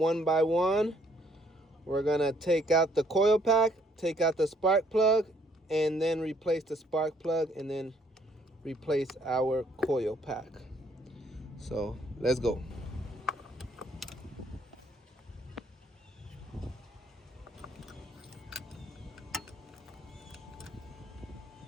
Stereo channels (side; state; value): both; normal; correlation 0.66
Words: by one. We're gonna take out the coil pack, take out the spark plug, and then replace the spark plug, and then replace our coil pack. So let's go.